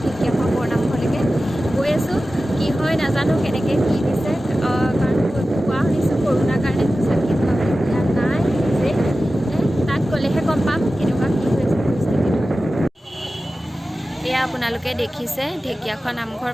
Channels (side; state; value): both; normal; correlation 0.95